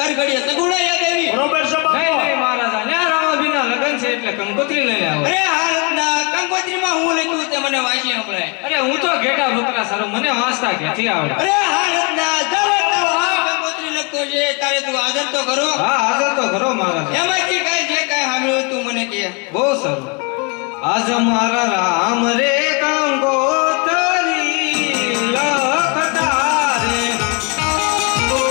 હર ઘડીએ સગુણા યાદ આવી? બરોબર છે બાપુ. નહીં નહીં મહારાજા ન્યા રામાભીના લગ્ન છે એટલે કંકોત્રી લઈને આવો અરે હા રત્ના કંકોત્રીમાં હું લખ્યું તે મને વાંચી સંભળાય. અરે હું તો ઘેટા ભૂતરા સારું મને વાંચતા ક્યાંથી આવડે અરે હા રત્ના ચાલો તો હા કંકોત્રી લખતો છે તારે તું હાજર તો કરો. હા હાજર તો ખરો મહારાજા એમાંથી કઈ જે કઈ સાંભળ્યું તું મને કહે. બહુ સારું આજ મારા રામ રે કંકોત્રી લખતા રે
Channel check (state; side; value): quieter; right; 32.9 dB